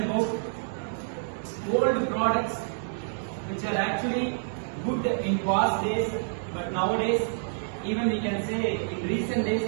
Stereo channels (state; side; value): silent; left; digital silence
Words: old products which are actually good in past days, but nowadays, even we can say in recent days